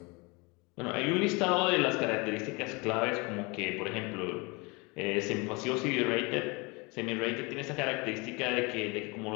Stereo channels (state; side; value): quieter; right; 27.9 dB